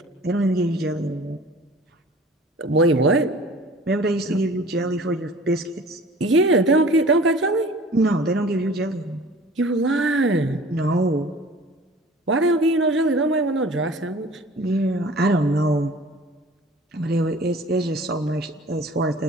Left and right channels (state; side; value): normal; both; correlation 0.46